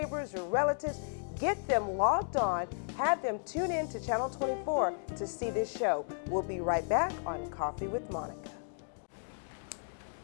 your relatives, get them logged on, have them tune in to Channel 24 to see this show. We'll be right back on Coffee with Monica.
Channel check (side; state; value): right; silent; digital silence